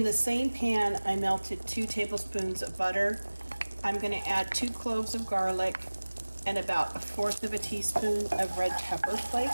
the same pan, I melted 2 tablespoons of butter. I'm going to add 2 cloves of garlic and about 1/4 teaspoon of red pepper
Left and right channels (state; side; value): inverted; both; correlation -1.00